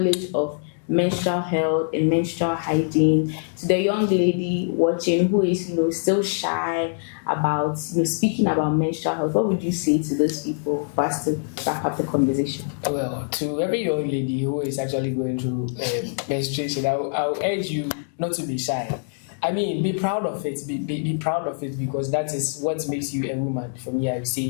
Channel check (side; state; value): right; silent; digital silence